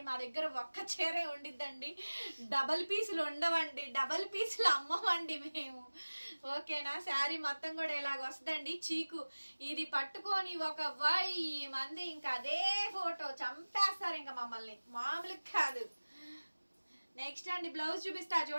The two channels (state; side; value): inverted; both; correlation -1.00